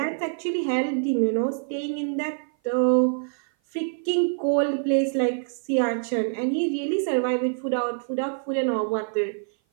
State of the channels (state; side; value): silent; left; 56 dB below the other